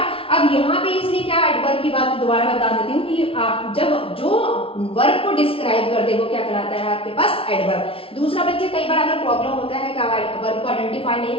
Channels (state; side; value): late; right; 0.26 ms